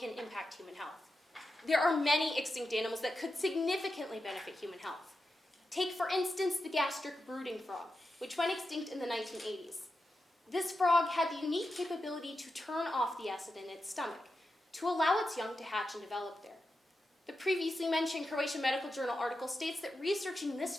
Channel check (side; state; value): both; normal; correlation 0.89